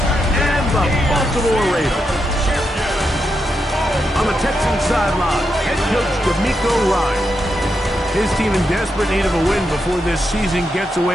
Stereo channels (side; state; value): both; normal; correlation 0.84